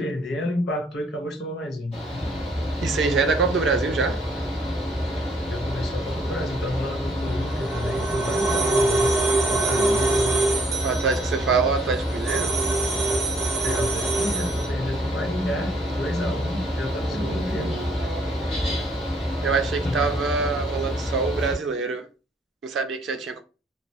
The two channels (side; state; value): both; normal; correlation 0.64